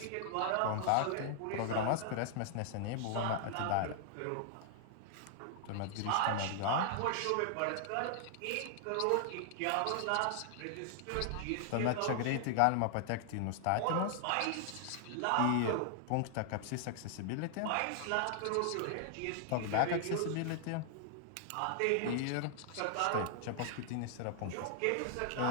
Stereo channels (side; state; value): both; different; correlation -0.01